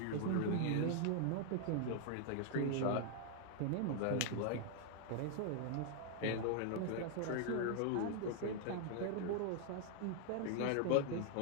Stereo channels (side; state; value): both; different; correlation 0.00